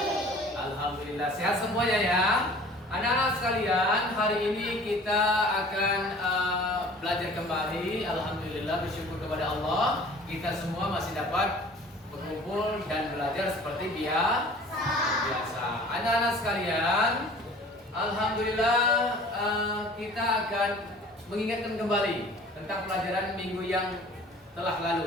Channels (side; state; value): both; normal; correlation 0.47